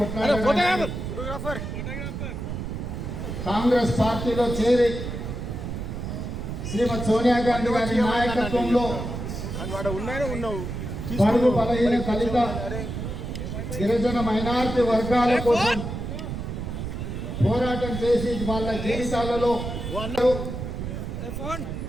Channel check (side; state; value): right; noise; rumble, 5 dB below the sound